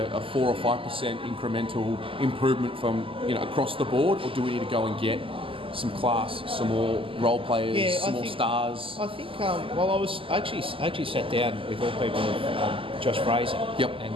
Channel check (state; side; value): late; left; 0.26 ms